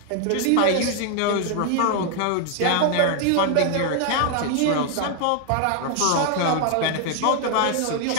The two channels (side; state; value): both; different; correlation 0.00